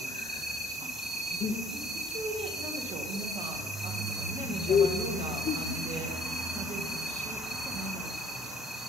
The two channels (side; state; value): both; normal; correlation 0.57